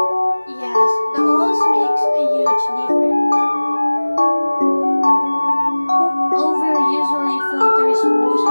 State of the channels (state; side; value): inverted; both; correlation -1.00